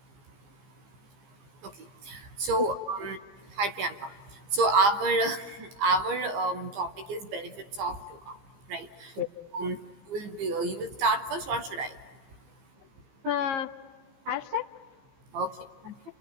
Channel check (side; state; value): left; late; 15 ms